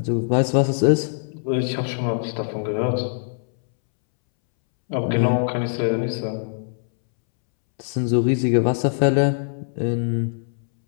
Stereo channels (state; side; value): silent; right; 64 dB below the other